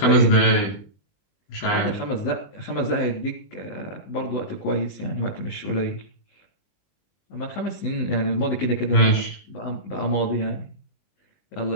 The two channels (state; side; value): late; right; 20 ms